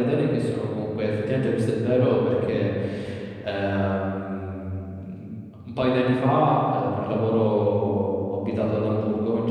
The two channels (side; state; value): both; identical; correlation 1.00